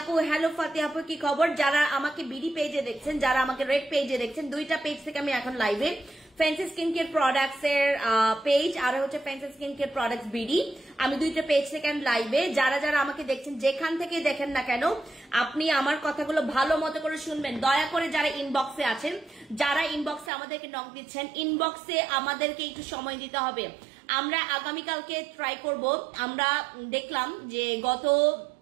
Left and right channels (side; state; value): left; drops out; at 20.3 s